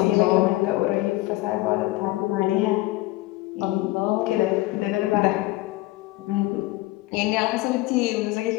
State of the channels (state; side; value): quieter; right; 19.0 dB